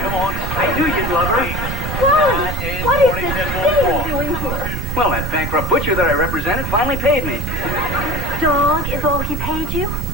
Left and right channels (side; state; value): right; noise; rumble, 3 dB below the sound